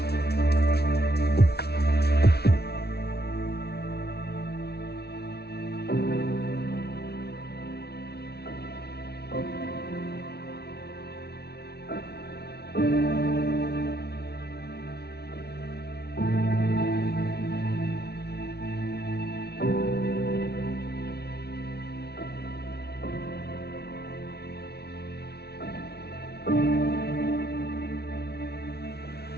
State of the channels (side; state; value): right; late; 0.47 ms